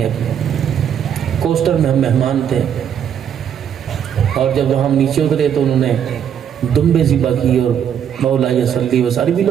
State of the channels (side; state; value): left; quieter; 8.7 dB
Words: کی. کوسٹر میں ہم مہمان تھے اور جب وہاں ہم نیچے اترے تو انہوں نے دمبے ذبح کی اور مولا صلی و سارے بھی